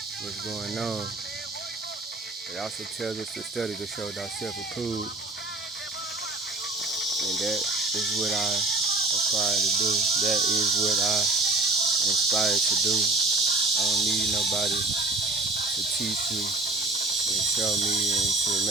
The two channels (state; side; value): quieter; left; 3.2 dB